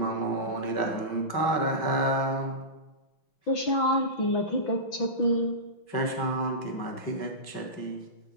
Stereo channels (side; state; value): right; late; 6.0 ms